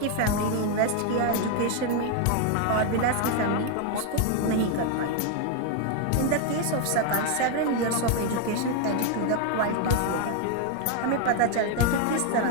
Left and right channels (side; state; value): both; different; correlation 0.01